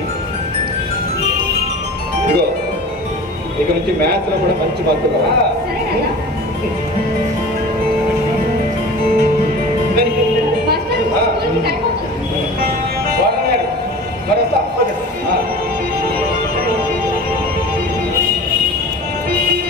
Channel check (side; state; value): both; normal; correlation 0.37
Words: ఇదిగో ఇక నుంచి మ్యాథ్స్ లో కూడా మంచి మార్కులు